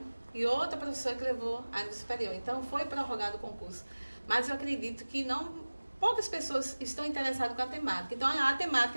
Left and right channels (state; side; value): inverted; both; correlation -1.00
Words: e outra professora que levou a nível superior. Então foi prorrogado o concurso. Mas eu acredito que poucas pessoas estão interessadas com a temática. Então a